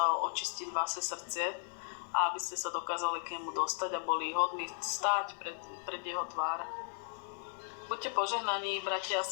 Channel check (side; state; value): right; silent; digital silence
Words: očistiť vaše srdce a aby ste sa dokázali k nemu dostať a boli hodní stáť pred jeho tvár. Buďte požehnaní, bratia a